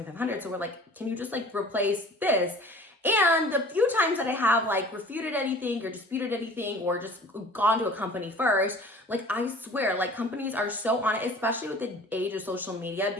So we're like, can you just like replace this? And the few times that I have like refuted anything or disputed anything or just gone to a company first, like I swear, like companies are so on it, especially with the age of social media,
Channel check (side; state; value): both; normal; correlation 0.46